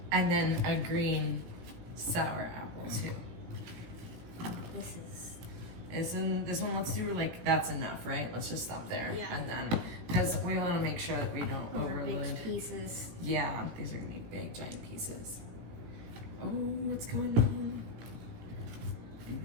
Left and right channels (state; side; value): late; left; 17 ms